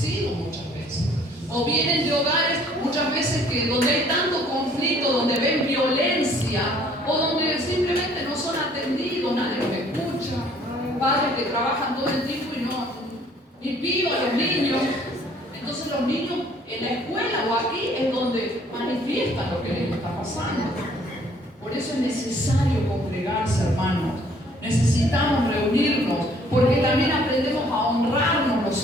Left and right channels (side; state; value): both; normal; correlation 0.59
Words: muchas veces. O vienen de hogares muchas veces donde hay tanto conflicto, donde ven violencia, o donde simplemente no son atendidos, nadie los escucha. Padres que trabajan todo el tiempo y vivan a los niños. Entonces los niños en la escuela o aquí es donde manifiestan lo que les está pasando. Por eso es necesario congregarse, hermanos. Necesitamos reunirnos, porque también aprendemos a honrarnos los